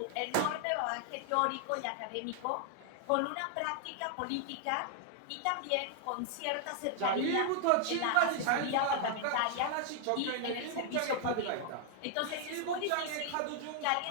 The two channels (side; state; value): both; different; correlation 0.00